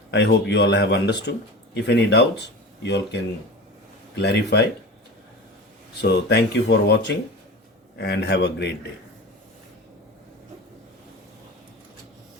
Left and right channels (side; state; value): both; normal; correlation 0.31